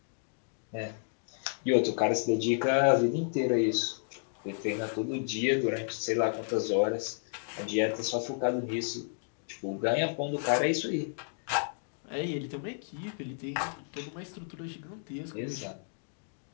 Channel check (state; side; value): silent; right; digital silence